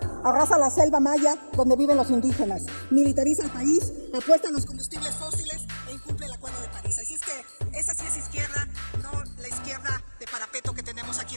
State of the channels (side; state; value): both; inverted; correlation -1.00